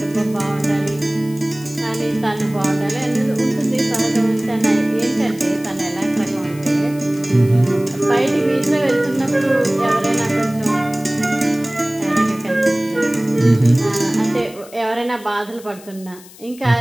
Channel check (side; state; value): left; noise; hiss, 21 dB below the sound